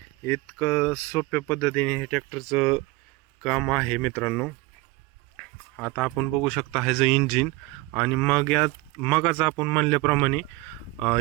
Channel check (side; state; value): left; quieter; 21.6 dB